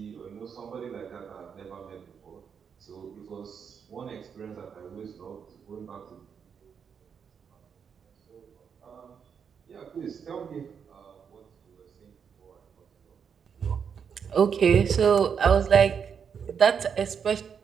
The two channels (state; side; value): quieter; left; 7.0 dB